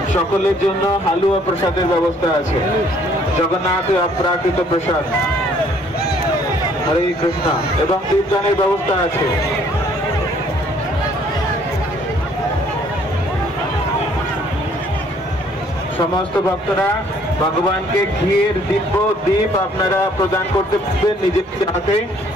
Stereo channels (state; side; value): normal; both; correlation 0.61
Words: সকলের জন্য হালুয়া প্রসাদের ব্যবস্থা আছে। জগন্নাথের অপ্রাকৃত প্রসাদ, হরে কৃষ্ণ, এবং দীপদানের ব্যবস্থা আছে। সমস্ত ভক্তরা ভগবানকে ঘিয়ের দীপ আপনারা প্রদান করতে পারবেন নিজের হাতে।